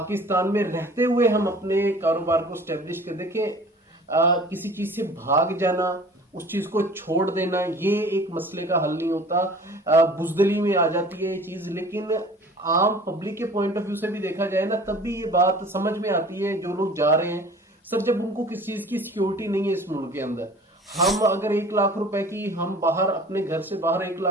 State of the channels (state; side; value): normal; both; correlation 0.46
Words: में रहते हुए हम अपने कारोबार को स्टेब्लिश कर। देखिए, किसी चीज से भाग जाना, उस चीज को छोड़ देना, ये एक मसले का हल नहीं होता। बुजदली में आ जाती है ये चीज, लेकिन आम पब्लिक के पॉइंट ऑफ व्यू से भी देखा जाए ना, तब भी ये बात समझ में आती है। जो लोग जा रहे हैं सर, जब उनको किसी चीज की सिक्योरिटी नहीं है इस मुल्क के अंदर, हम अगर 1 लाख रुपए की हम बाहर अपने घर से बाहर 1